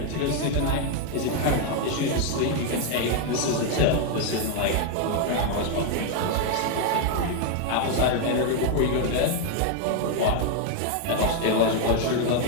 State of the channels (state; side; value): different; both; correlation 0.00